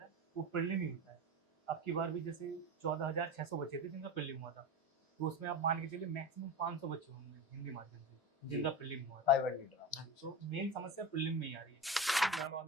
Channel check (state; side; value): normal; both; correlation 0.26